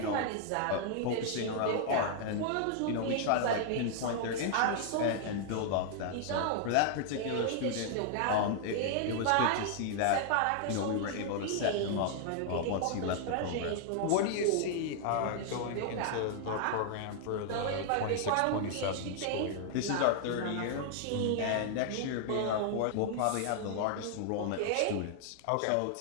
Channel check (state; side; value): different; both; correlation -0.01